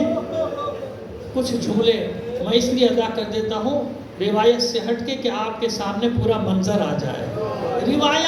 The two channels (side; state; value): both; identical; correlation 1.00